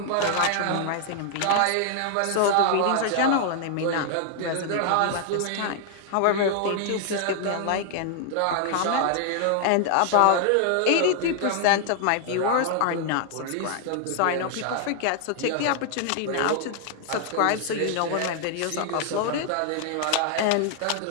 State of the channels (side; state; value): both; different; correlation -0.01